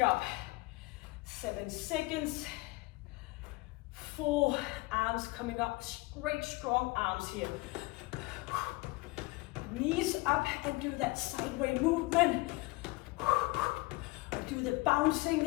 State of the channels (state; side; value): quieter; right; 23.2 dB